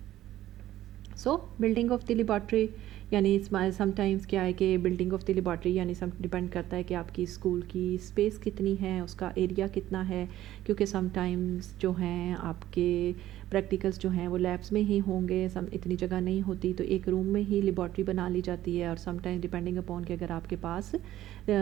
سو بلڈنگ آف دی لیبارٹری یعنی سم ٹائمز کیا ہے کہ بلڈنگ آف دی لیبارٹری یعنی سم ڈپینڈ کرتا ہے کہ آپ کی اسکول کی اسپیس کتنی ہے، اس کا ایریا کتنا ہے. کیونکہ سم ٹائمز جو ہیں آپ کے پریکٹیکلس جو ہیں وہ لیبس میں ہی ہوں گے، اتنی جگہ نہیں ہوتی تو ایک روم میں ہی لیبارٹری بنا لی جاتی ہے. اور سم ٹائم ڈپینڈنگ اپون کہ اگر آپ کے پاس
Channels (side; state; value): left; quieter; 13.8 dB